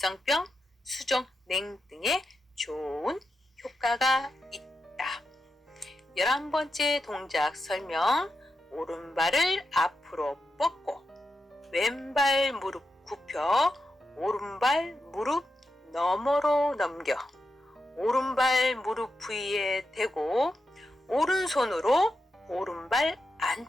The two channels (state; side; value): normal; both; correlation 0.87